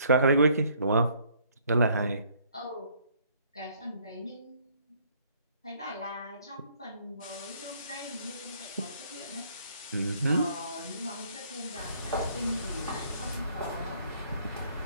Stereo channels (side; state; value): both; inverted; correlation -0.63